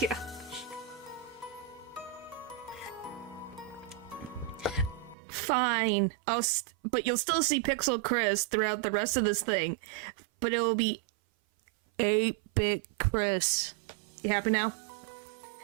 Fine. But you'll still see Pixel Chris throughout the rest of this thing. But it will be 8-bit Chris. You happy now?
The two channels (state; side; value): drops out; left; at 5.2 s